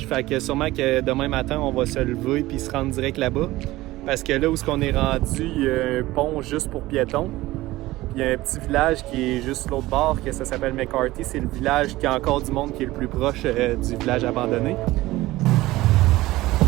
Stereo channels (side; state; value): left; quieter; 17.8 dB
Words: Fait que sûrement que demain matin, on va se lever puis se rendre direct là-bas. Parce que là où on est rendu, il y a un pont juste pour piétons. Puis il y a un petit village qui est juste l'autre bord, que ça s'appelle McCarthy. C'est le village qui a encore du monde qui est le plus proche du village abandonné.